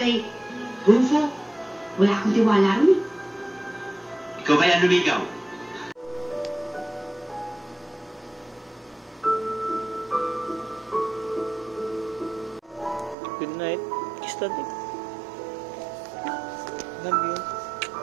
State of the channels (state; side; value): drops out; left; at 13.2 s